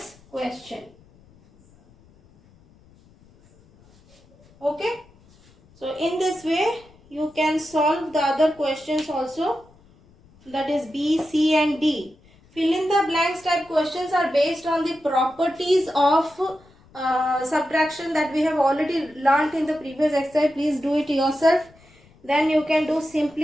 question. Okay. So in this way you can solve the other questions also, that is B, C and D. Fill in the blanks type questions are based on the properties of subtraction that we have already learnt in the previous exercise. Please do it yourself. Then you can do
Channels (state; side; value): noise; left; rumble, 28 dB below the sound